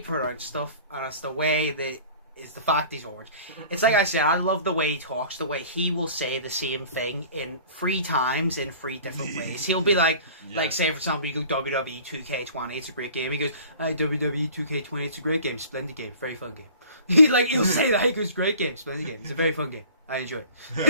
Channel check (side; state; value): both; inverted; correlation -0.47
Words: pronounces stuff, and it's the way that is the fact he's orange. It's like I said, I love the way he talks, the way he will say the same thing in 3 times in 3 different ways. He'll be like, say for example, you go WWE 2K20, it's a great game. He goes, WWE 2K20, it's a great game, splendid game, very fun game. He'll say that, he goes, great game, splendid game, it's a very fun game. I enjoy